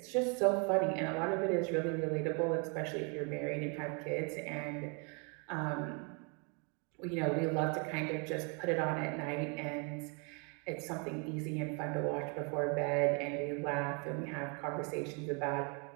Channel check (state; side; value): quieter; left; 35.3 dB